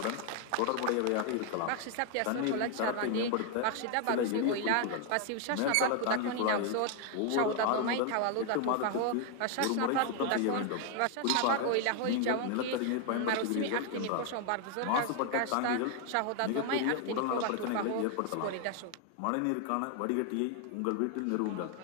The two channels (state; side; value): different; both; correlation 0.01